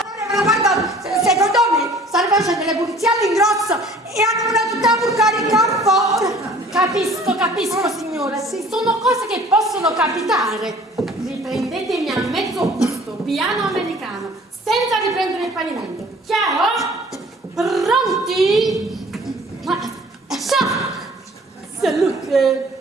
guarda, secondo me stanno facendo le pulizie all'ingrosso e hanno una tutta burcare in campo. Capisco, signora. Sì, sono cose che possono capitare. Riprendetemi a mezzo busto, piano americano, senza riprendere il pavimento. Chiaro? Pronti? Ciao! Salute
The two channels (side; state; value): both; normal; correlation 0.51